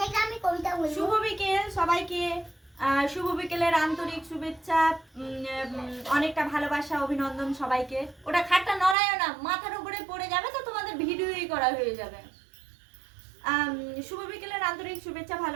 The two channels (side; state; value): left; drops out; at 9.0 s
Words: আমি কবিতা বলবো। শুভ বিকেল সবাইকে। শুভ বিকেলের আন্তরিক শুভেচ্ছা, অনেকটা ভালোবাসা, অভিনন্দন সবাইকে। ওটা খাটটা নড়ায়ও না, মাথার উপরে পড়ে যাবে তো তোমাদের ভিডিওই করা হয়ে যাবে। শুভ বিকেলের আন্তরিক শুভেচ্ছা